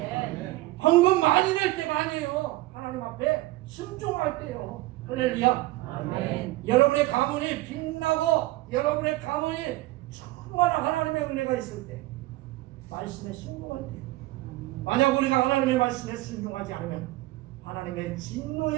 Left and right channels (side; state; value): left; quieter; 18.4 dB